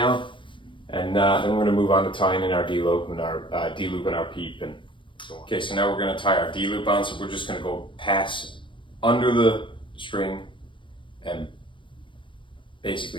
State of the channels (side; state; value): right; late; 0.24 ms